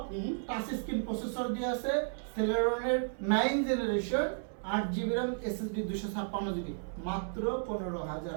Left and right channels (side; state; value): left; silent; 56 dB below the other